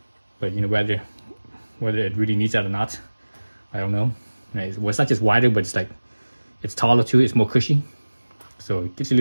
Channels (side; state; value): both; inverted; correlation -1.00